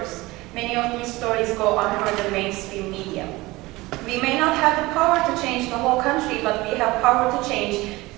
Many of these stories go unheard in mainstream media. We may not have the power to change the whole country, but we have power to change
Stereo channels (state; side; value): quieter; left; 20.7 dB